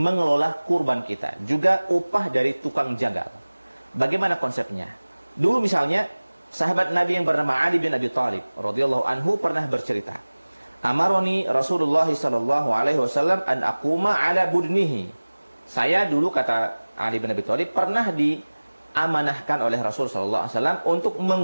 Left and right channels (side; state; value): both; inverted; correlation -1.00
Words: kurban kita, juga upah dari tukang jagal. Bagaimana konsepnya? Dulu misalnya sahabat Nabi yang bernama Ali bin Abi Thalib radhiyallahu anhu pernah bercerita, "Amaroni Rasulullah sallallahu alaihi wasallam an aquma ala budnihi." Saya dulu, kata Ali bin Abi Thalib, pernah diamanahkan oleh Rasul sallallahu alaihi wasallam untuk